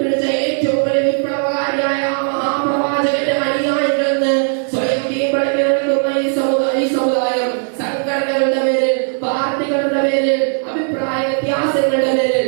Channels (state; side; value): silent; left; 58 dB below the other